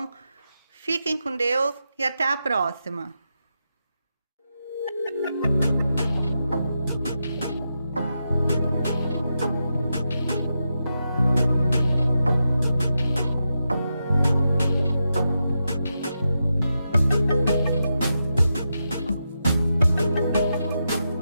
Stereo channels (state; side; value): inverted; both; correlation -0.87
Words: Fiquem com Deus e até a próxima.